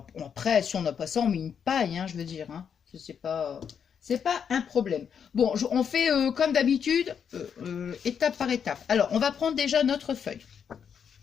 après, si on n'a pas ça, on met une paille, hein, je veux dire. Hein. C'est pas un problème. Bon, on fait comme d'habitude, étape par étape. Alors, on va prendre déjà notre feuille.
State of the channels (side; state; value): right; quieter; 7.4 dB